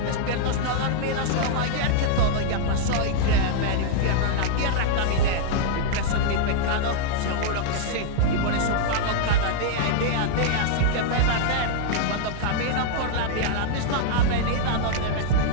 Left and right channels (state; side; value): different; both; correlation -0.01